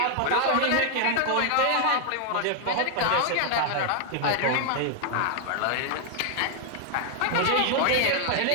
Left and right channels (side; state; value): both; different; correlation 0.00